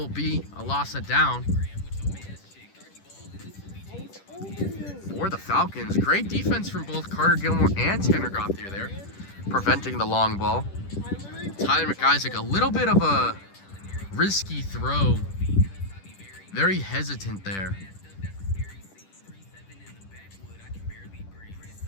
be a loss of down for the Falcons. Great defense from both Carter Gilmore and Tanner Gauthier there, preventing the long ball. Tyler McIsaac, a little bit of a risky throw. Very hesitant there.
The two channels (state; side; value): late; right; 10 ms